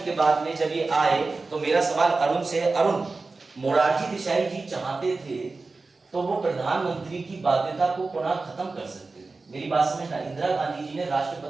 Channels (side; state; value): left; quieter; 3.8 dB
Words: के बाद में जब ये आए तो मेरा सवाल अरुण से है, अरुण मोरारजी देसाई जी चाहते थे तो वो प्रधानमंत्री की बाध्यता को पुनः खत्म कर सकते थे। मेरी बात समझना, इंदिरा गांधी जी ने